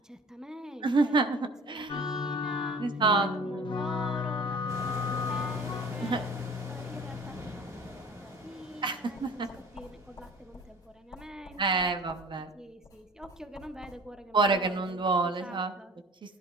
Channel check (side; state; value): both; normal; correlation 0.46